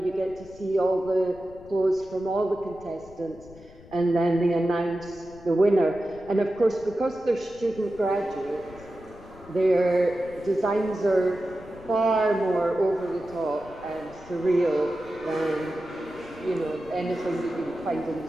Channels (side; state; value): left; noise; rumble, 21 dB below the sound